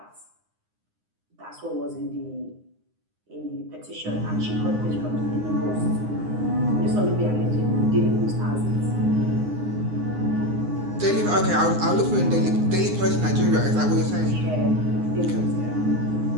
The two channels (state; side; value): late; left; 9.7 ms